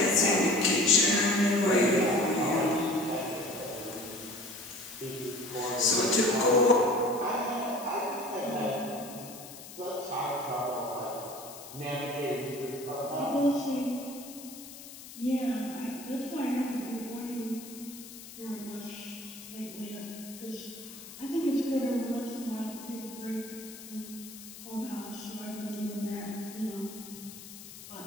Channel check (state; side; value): noise; left; hiss, 15 dB below the sound